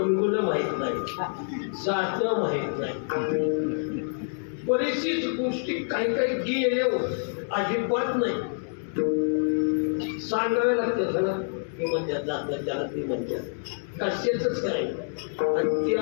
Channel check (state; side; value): silent; right; digital silence